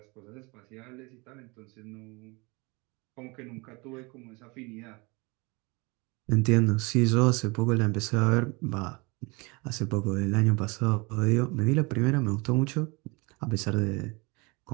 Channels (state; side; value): quieter; left; 27.3 dB